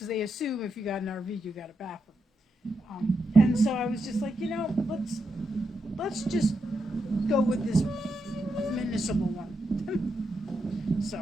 they assume if you got an RV, you got a bathroom. And so I was just like, you know, let's just go with this municipal one.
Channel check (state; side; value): normal; both; correlation 0.84